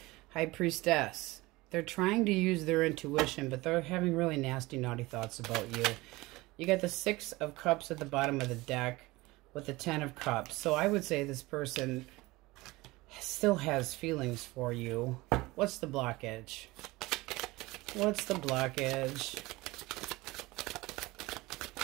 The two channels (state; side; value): quieter; left; 21.0 dB